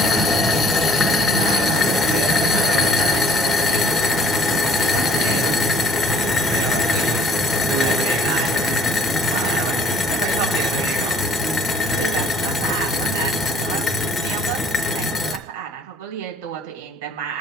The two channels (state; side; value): normal; both; correlation 0.57